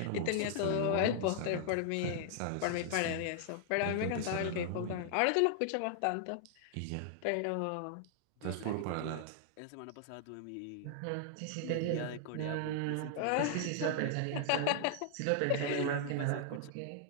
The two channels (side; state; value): both; different; correlation -0.01